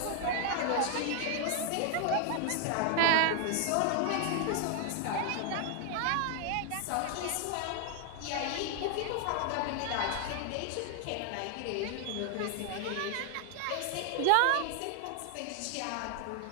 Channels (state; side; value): different; both; correlation 0.00